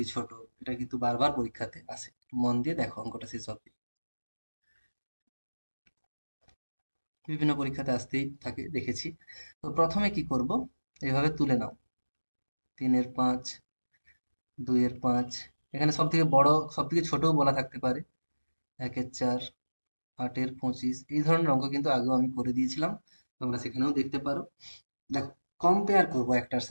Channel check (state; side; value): inverted; both; correlation -1.00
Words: ছোট, এটা কিন্তু বারবার পরীক্ষাতে আসে। মন দিয়ে দেখো অঙ্কটা শেষ অবধি, বিভিন্ন পরীক্ষাতে আসতেই থাকে, দেখেছি। তো প্রথমে কি করব, এভাবে তুলে নাও। 3-এর 5, 2-এর 5, এখানে সব থেকে বড় সব থেকে ছোটও বলা থাকতে পারে। 1-এর 4, 8-এর 25, এই ধরনের অঙ্ক কিন্তু আগেও আমি করে দিয়েছিলাম, তোমরা সেখানেও দেখতে পারো। দেখো, কম্পেয়ার করব একটার